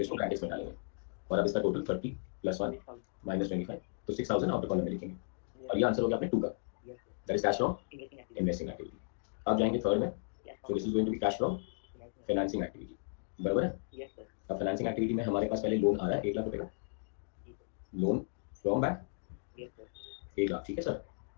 इसको ब्रैकेट्स में डालेंगे। और अब इसका टोटल 30 प्लस 1 माइनस 25 तो 6,000 आउटर कॉलम में लिखेंगे, और ये आंसर हो गया अपने 2 का, Yes, sir. That is cash from Investing activity. Investing activity. अब जाएंगे थर्ड में, Cash so from this is going to be cash from financing. Financing activity, बराबर है? Yes, sir. अब फाइनेंसिंग एक्टिविटी में हमारे पास पहले लोन आ रहा है 1 लाख रुपए का, जी sir. Loan from bank Yes, sir. 1 lakh, ठीक है sir?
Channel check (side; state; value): right; silent; digital silence